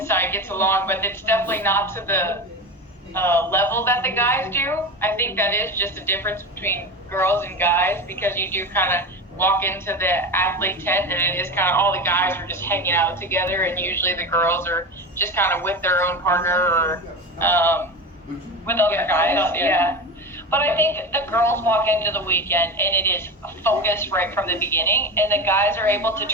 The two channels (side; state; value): both; normal; correlation 0.25